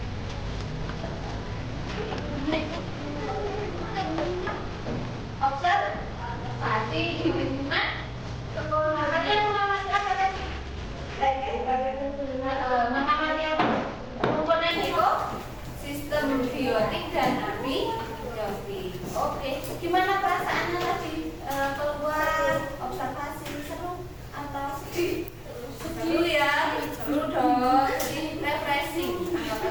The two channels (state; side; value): identical; both; correlation 1.00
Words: Observasi di lingkungan sekolah. Kalian mengamati apa tadi? Mengamati apa? Komponen ekosistem biotik dan abiotik. Oke, gimana perasaannya tadi keluar observasi? Seru atau sedih? Seru ya, seru dong. Jadi refreshing,